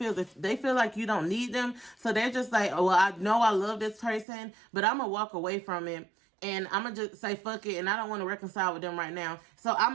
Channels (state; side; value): drops out; left; at 4.2 s